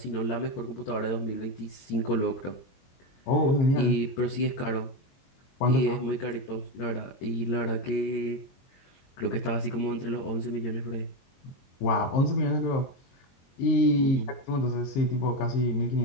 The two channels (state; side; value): late; right; 22 ms